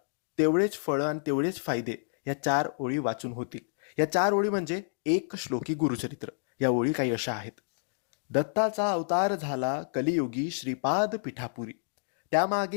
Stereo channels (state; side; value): silent; right; digital silence